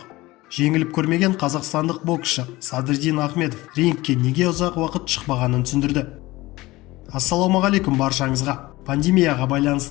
Жеңіліп көрмеген қазақстандық боксшы Садриддин Ахмедов рингке неге ұзақ уақыт шықпағанын түсіндірді. Ассалаумағалейкум баршаңызға. Пандемияға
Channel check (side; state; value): right; quieter; 19.6 dB